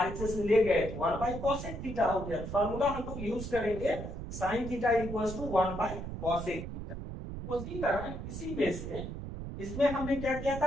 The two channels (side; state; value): right; noise; rumble, 7 dB below the sound